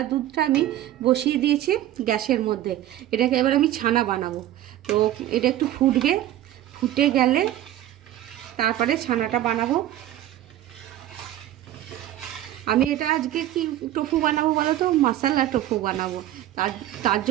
দুধটা আমি বসিয়ে দিয়েছি গ্যাসের মধ্যে। এটাকে এবার আমি ছানা বানাবো। তো এটা একটু ফুটবে, ফুটে গেলে তারপরে ছানাটা বানাবো। আমি এটা আজকে কি টোফু বানাবো বলো তো, মশলা টোফু বানাবো। তার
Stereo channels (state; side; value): quieter; left; 13.1 dB